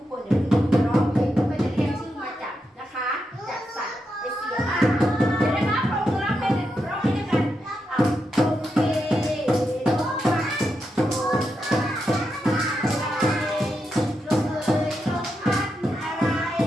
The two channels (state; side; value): normal; both; correlation 0.85